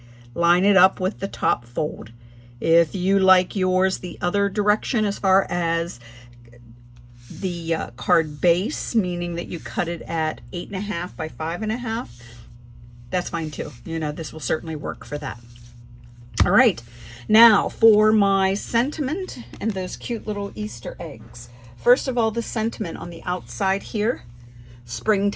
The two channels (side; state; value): both; identical; correlation 1.00